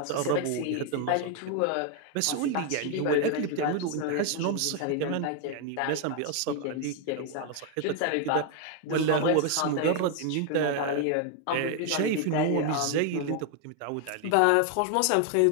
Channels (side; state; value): both; different; correlation 0.00